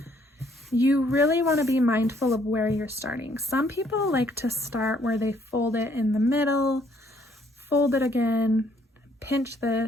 you really want to be mindful of where you're starting. Some people like to start where they fold it in the middle, fold it again, pinch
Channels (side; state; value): both; normal; correlation 0.66